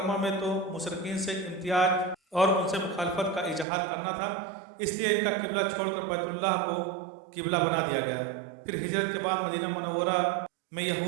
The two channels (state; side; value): drops out; left; at 3.7 s